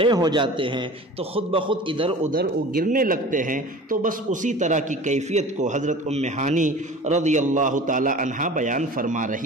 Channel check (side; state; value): both; normal; correlation 0.40